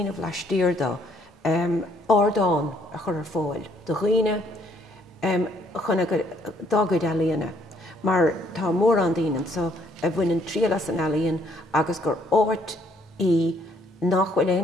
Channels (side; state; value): both; normal; correlation 0.66